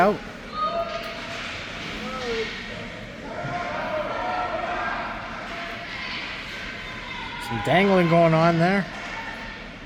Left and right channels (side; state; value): both; identical; correlation 1.00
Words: Some dangling going on there.